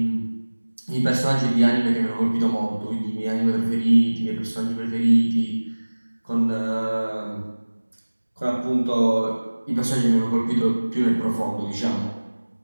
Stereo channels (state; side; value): inverted; both; correlation -1.00